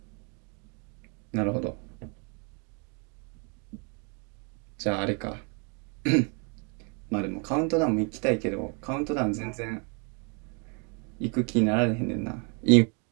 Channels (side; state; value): left; quieter; 36.3 dB